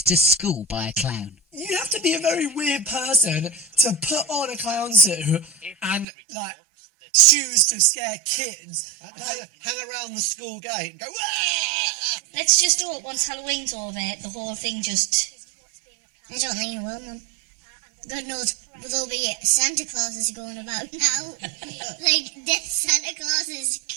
to school by a clown. You have to be a very weird person to put on a clown suit and, shoes to scare kids. Hang around the school gate and go, Wah! Let's just do it once Halloween's over, the whole thing just... I don't think it will, Mum. God knows, there'll be Santa Clauses going about now. Dead Santa Clauses.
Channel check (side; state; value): left; drops out; at 6.1 s